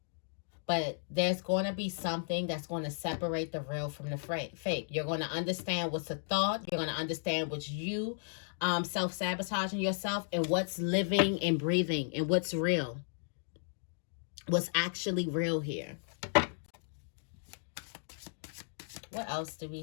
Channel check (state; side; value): silent; right; digital silence